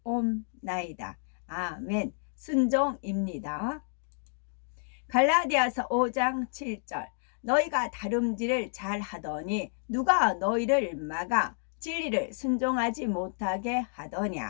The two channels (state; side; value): silent; right; digital silence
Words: 아멘. 순종입니다. 갈라디아서 5장 7절. 너희가 다름질을 잘 하더니 누가 너희를 막아 진리를 순종하지 못하게